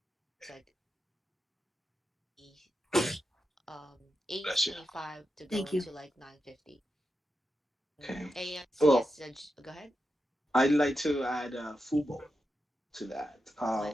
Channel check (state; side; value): normal; both; correlation 0.88